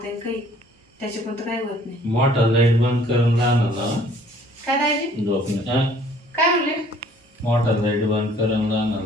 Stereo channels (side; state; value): both; normal; correlation 0.57